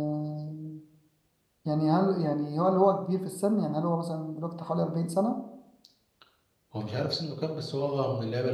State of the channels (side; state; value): both; identical; correlation 1.00